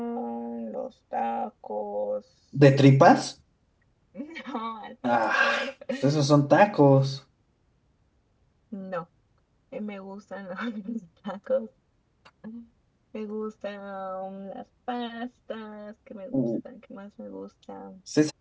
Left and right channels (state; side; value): identical; both; correlation 1.00